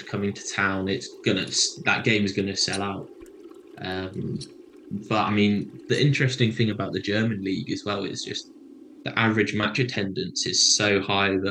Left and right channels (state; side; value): identical; both; correlation 1.00